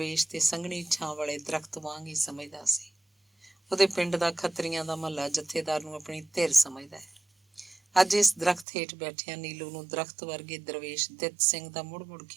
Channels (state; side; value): drops out; left; at 8.7 s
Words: ਤੇ ਸੰਘਣੀ ਛਾਂ ਵਾਲੇ ਦਰਖਤ ਵਾਂਗ ਹੀ ਸਮਝਦਾ ਸੀ। ਉਹਦੇ ਪਿੰਡ ਦਾ ਖੱਤਰੀਆਂ ਦਾ ਮਹੱਲਾ ਜਥੇਦਾਰ ਨੂੰ ਆਪਣੀ ਧਿਰ ਸਮਝਦਾ ਹੈ। ਅੱਜ ਇਸ ਦਰਖਤ ਹੇਠ ਬੈਠਿਆਂ ਨੀਲੂ ਨੂੰ ਦਰਖਤ ਵਰਗੇ ਦਰਵੇਸ਼ ਦਿੱਤ ਸਿੰਘ ਦਾ ਮੁੜ-ਮੁੜ